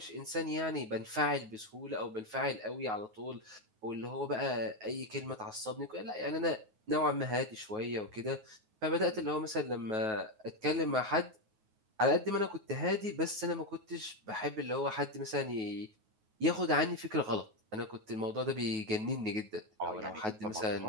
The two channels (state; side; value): late; left; 9.3 ms